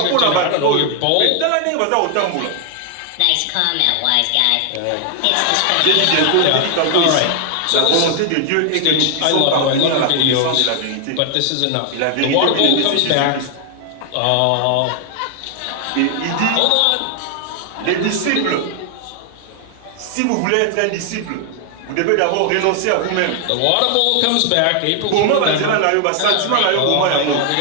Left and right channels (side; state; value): both; different; correlation 0.00